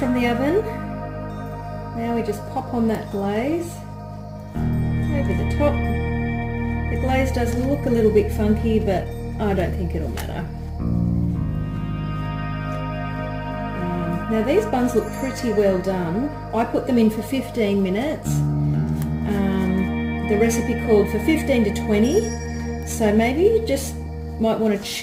the oven. Now we just pop on that glaze over the top. The glaze does look a little bit funky, but I don't think it'll matter. Now these buns look pretty well done. I put them in for 15 minutes. The recipe called for 15 to 20. So maybe you just might want to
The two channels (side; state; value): both; identical; correlation 1.00